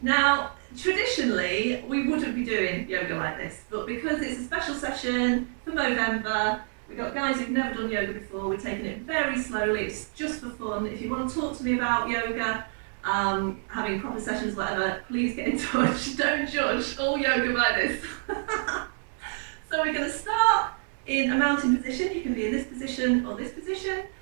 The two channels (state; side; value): silent; left; 60 dB below the other